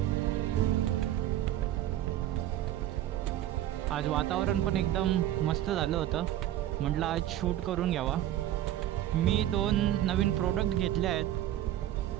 आज वातावरण पण एकदम मस्त झालं होतं. म्हटलं आज शूट करून घ्यावा. मी 2 नवीन प्रोडक्ट घेतले आहेत,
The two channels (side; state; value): left; quieter; 12.9 dB